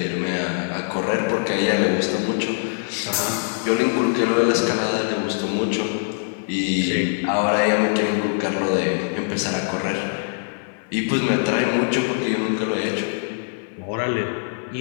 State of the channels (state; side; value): silent; right; 56 dB below the other